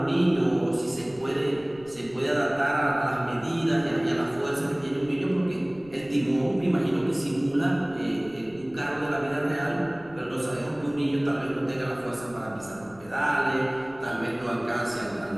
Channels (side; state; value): left; noise; rumble, 23 dB below the sound